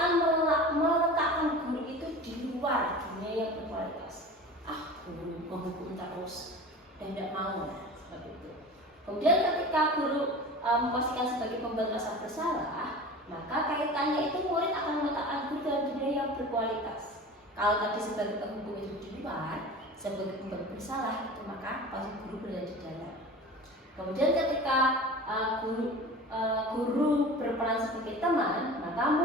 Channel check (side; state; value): both; normal; correlation 0.36